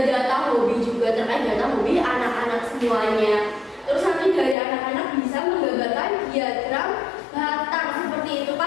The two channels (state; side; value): drops out; right; at 4.5 s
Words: data hobi juga, terkait data hobi anak-anak semuanya. Terus nanti dari anak-anak bisa menggambarkan diagram batang seperti itu,